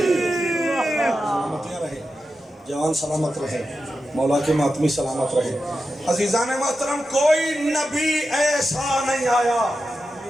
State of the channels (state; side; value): normal; both; correlation 0.90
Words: جوان سلامت رہے، مولا کے ماتمی سلامت رہے۔ عزیزان محترم، کوئی نبی ایسا نہیں آیا